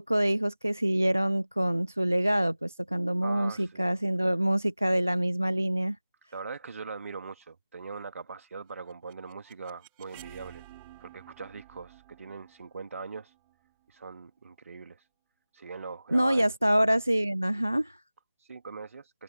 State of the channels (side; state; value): both; inverted; correlation -0.98